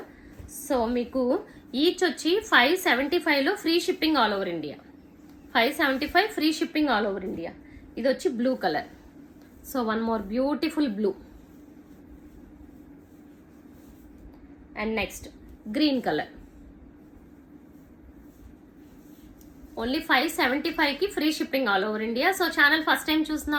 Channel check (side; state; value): both; identical; correlation 1.00